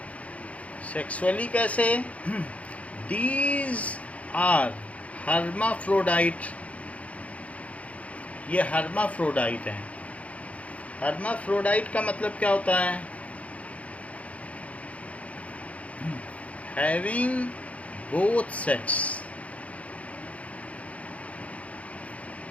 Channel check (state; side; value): late; right; 0.066 ms